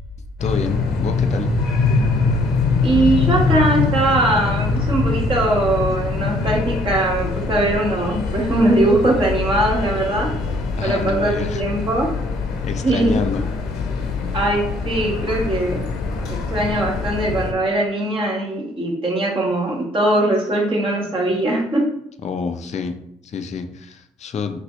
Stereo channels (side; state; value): both; normal; correlation 0.62